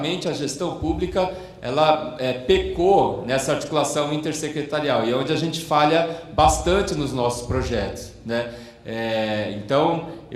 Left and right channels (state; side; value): identical; both; correlation 1.00